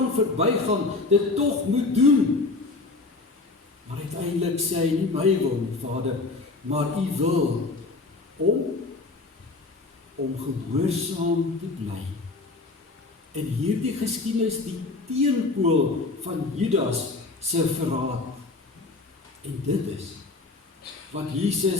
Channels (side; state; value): right; quieter; 3.6 dB